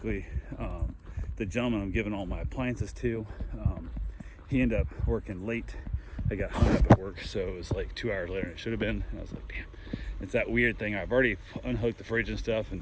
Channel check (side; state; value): both; identical; correlation 1.00